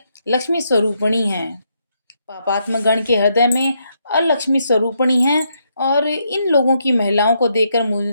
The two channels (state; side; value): inverted; both; correlation -0.77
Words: लक्ष्मी स्वरूपिणी हैं, पापात्म गण के हृदय में अलक्ष्मी स्वरूपिणी हैं। और इन लोगों की महिलाओं को